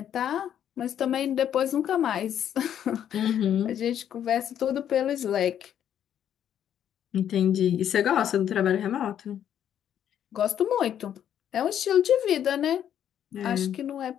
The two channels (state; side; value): quieter; right; 9.9 dB